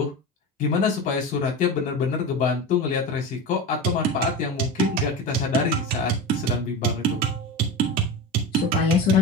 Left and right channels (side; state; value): both; normal; correlation 0.26